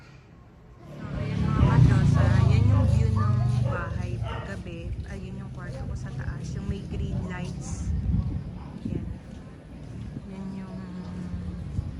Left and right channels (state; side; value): identical; both; correlation 1.00